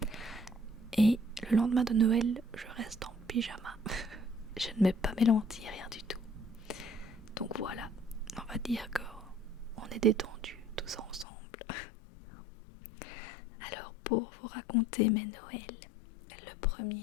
Et le lendemain de Noël, je reste en pyjama. Je ne mets pas mes lentilles, rien du tout. Donc voilà, on va dire qu'on est détendus tous ensemble. Alors pour vous raconter mes Noëls, le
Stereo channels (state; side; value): drops out; right; at 11.2 s